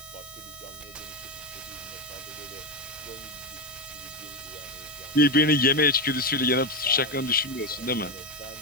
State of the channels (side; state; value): left; noise; hiss, 20 dB below the sound